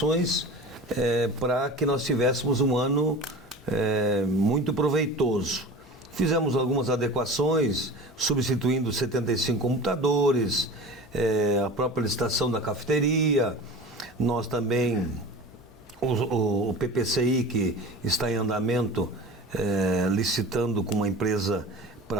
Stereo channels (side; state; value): both; normal; correlation 0.35